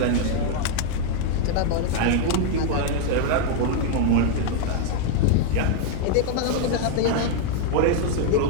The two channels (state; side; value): different; both; correlation 0.00